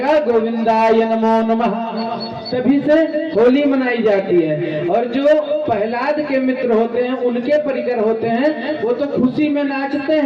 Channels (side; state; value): both; identical; correlation 1.00